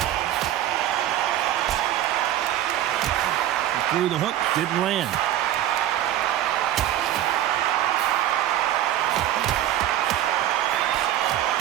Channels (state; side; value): quieter; left; 12.5 dB